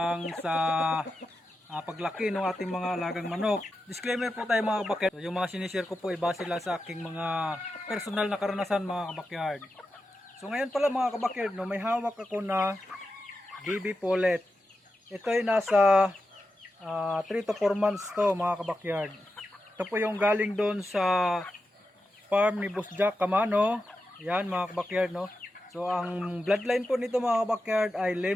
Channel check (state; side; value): normal; both; correlation 0.90